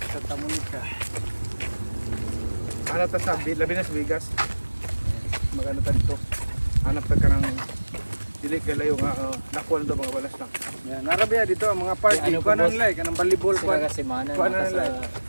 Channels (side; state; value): both; inverted; correlation -1.00